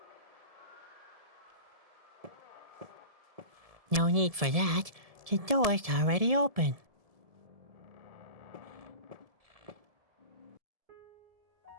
No need for that. The door's already open.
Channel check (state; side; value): late; left; 1.7 ms